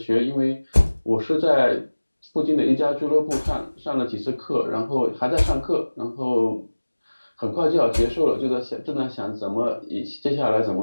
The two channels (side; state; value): both; inverted; correlation -1.00